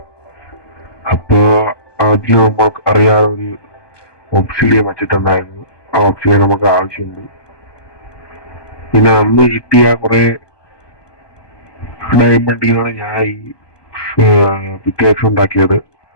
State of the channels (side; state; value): right; late; 1.2 ms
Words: അപ്പൊ അതിൽ നമുക്ക് അറിയാതെ ഒരു ഓക്സിഡിയൻ വെച്ചിട്ടുണ്ടായിരുന്നു. ആ ഓക്സിഡിയൻ നമുക്ക് ആവശ്യമുണ്ട്. പിന്നെ അന്ന് കിട്ടിയ കുറെ ഡയമണ്ടിനാണ് ഞാൻ ഈ പിക്കേക്സ് ഉണ്ടാക്കിയത്.